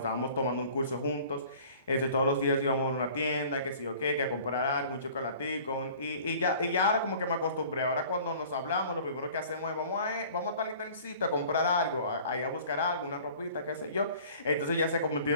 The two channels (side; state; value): both; inverted; correlation -0.48